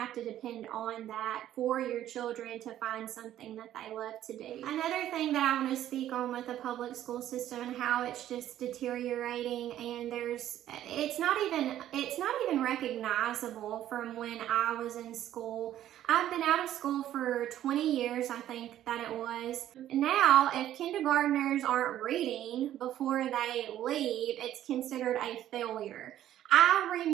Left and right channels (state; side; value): quieter; left; 12.2 dB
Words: to depend on that for your children to find something that they love to do. Another thing that I want to speak on with the public school system and how it's just deteriorating, and it's not even recognizable from when I was in school. I've been out of school for 20 years, I think that it was. Now, if kindergartners aren't reading before they leave, it's considered a failure. I